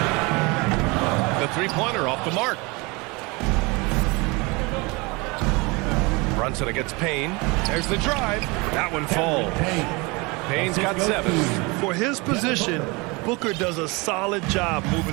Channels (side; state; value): left; quieter; 26.4 dB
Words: The three-pointer off the mark. Brunson against Payne. There's the drive. That one falls. Payne's got 7. For his position, Booker does a solid job